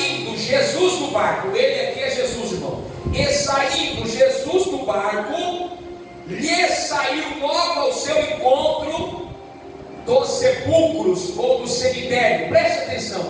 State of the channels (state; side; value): identical; both; correlation 1.00